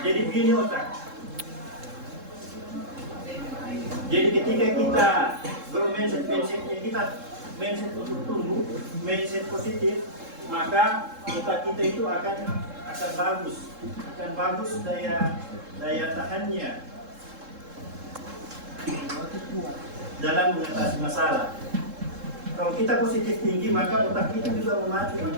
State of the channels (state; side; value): late; left; 3.7 ms